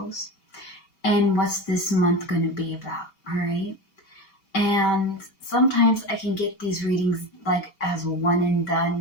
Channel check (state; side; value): late; right; 5.2 ms